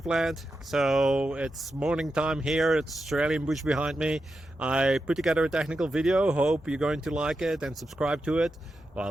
land. So it's morning time here. It's Australian bush behind me. I put together a technical video. Hope you're going to like it and subscribe to it. Well,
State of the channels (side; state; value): both; normal; correlation 0.89